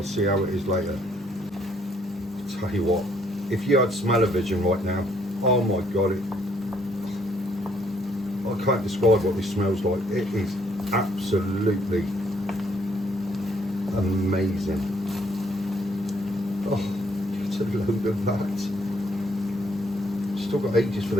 see how it is later. Tell you what, if you had smell-o-vision right now, oh my god, I can't describe what this smells like. It is absolutely amazing. Oh, it's a load of that. Still got ages for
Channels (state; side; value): normal; both; correlation 0.68